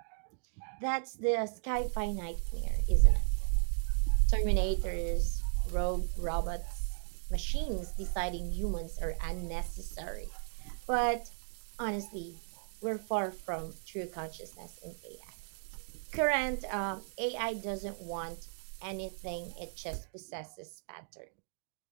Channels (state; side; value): silent; left; digital silence